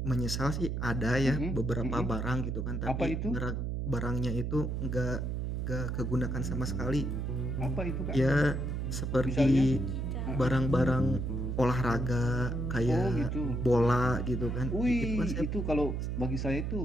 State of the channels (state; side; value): noise; right; hum, 2 dB below the sound